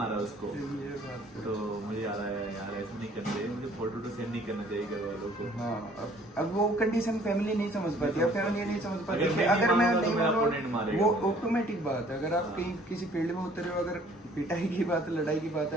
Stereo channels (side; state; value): both; normal; correlation 0.57